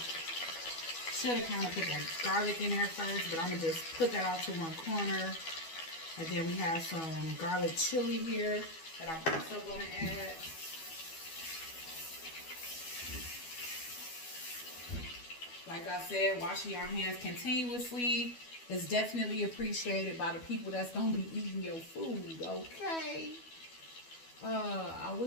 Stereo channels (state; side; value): late; right; 12 ms